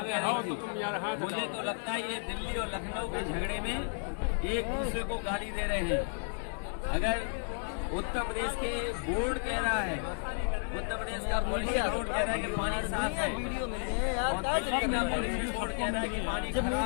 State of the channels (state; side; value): silent; right; 56 dB below the other